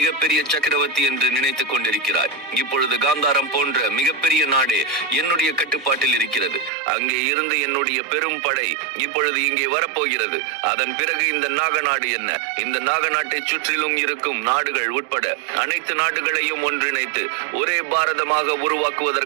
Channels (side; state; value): left; drops out; at 6.7 s